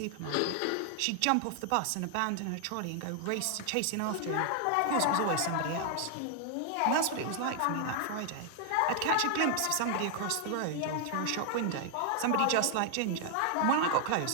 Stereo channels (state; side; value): different; both; correlation 0.00